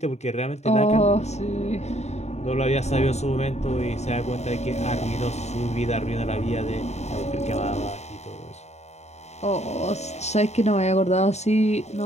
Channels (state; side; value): late; right; 0.32 ms